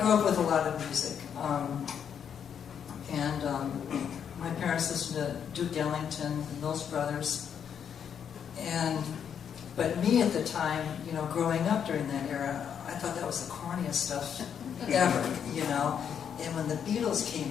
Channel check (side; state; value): right; quieter; 8.0 dB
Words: up with a lot of music. My parents listened to Duke Ellington, the Mills Brothers. But me at the time, you know, growing up during that era, I thought that was the corniest stuff ever, you know. And when the Beatles